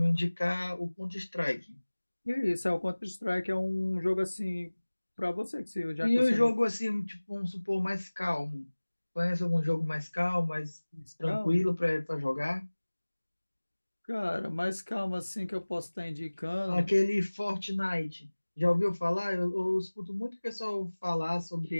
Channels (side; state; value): both; inverted; correlation -1.00